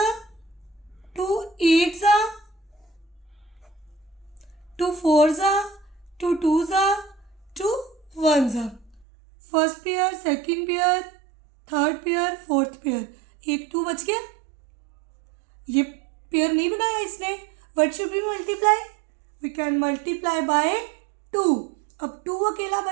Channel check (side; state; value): left; drops out; at 9.1 s